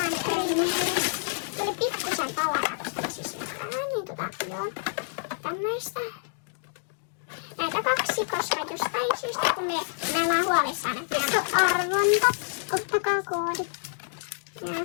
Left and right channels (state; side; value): silent; right; digital silence